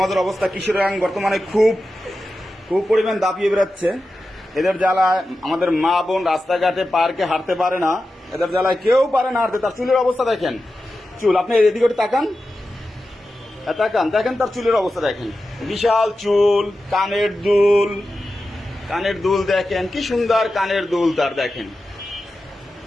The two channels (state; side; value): normal; both; correlation 0.92